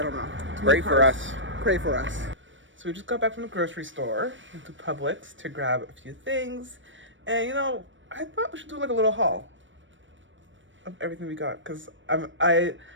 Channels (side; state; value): left; late; 0.56 ms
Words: don't know. Pray for us. Pray for us. So we just got back from the grocery store into Publix to grab a few things. And you know, I thought we should do like a little haul of everything we got, because